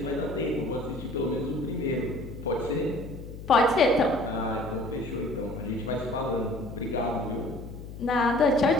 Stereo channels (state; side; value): noise; left; hum, 12 dB below the sound